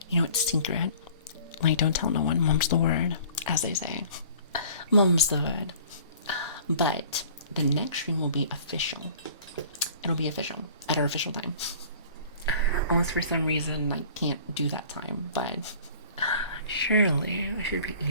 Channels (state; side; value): inverted; both; correlation -0.48